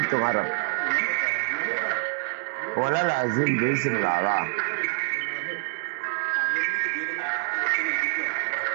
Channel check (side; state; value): left; silent; digital silence